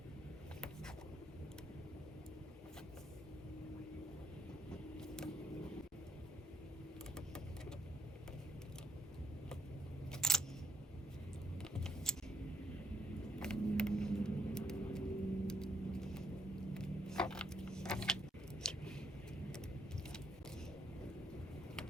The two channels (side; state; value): both; normal; correlation 0.73